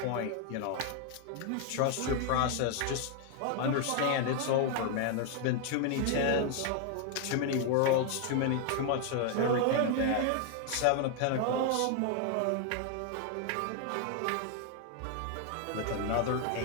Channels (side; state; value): both; different; correlation 0.00